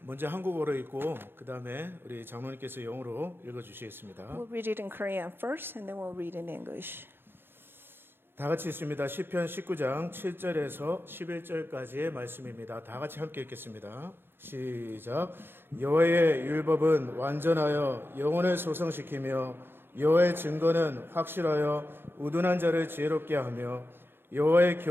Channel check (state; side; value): late; left; 0.10 ms